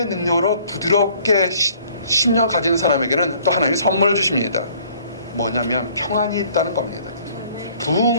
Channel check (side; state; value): both; inverted; correlation -0.58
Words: 능력으로 부드럽게 심령 가진 사람에게는 또 하나님이 선물을 주십니다. 뭐냐면 평안이 있다는 겁니다.